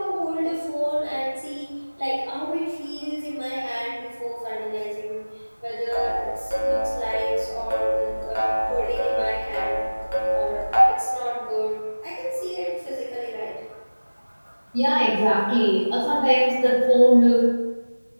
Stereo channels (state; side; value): inverted; both; correlation -1.00